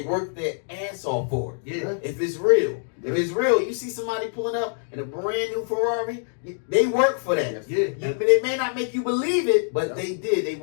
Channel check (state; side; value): silent; right; digital silence